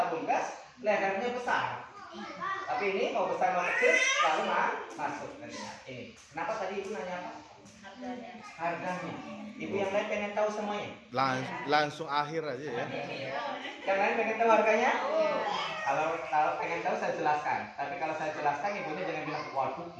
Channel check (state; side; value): identical; both; correlation 1.00